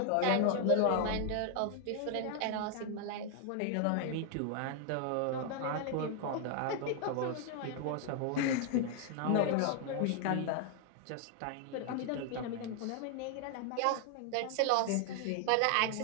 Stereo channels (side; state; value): both; different; correlation 0.00